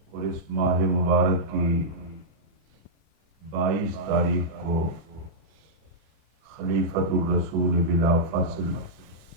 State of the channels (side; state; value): left; late; 24 ms